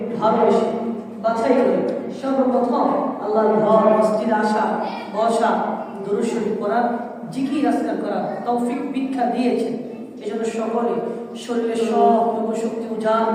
ভালোবেসে বাছাই করে সর্বপ্রথম আল্লাহর ঘর মসজিদে আসা বসা দুরূদ শরীফ পড়া জিকির আজকার করা তৌফিক ভিক্ষা দিয়েছেন। এজন্য সকলে শরীরের সবটুকু শক্তি উজাড়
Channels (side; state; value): both; identical; correlation 1.00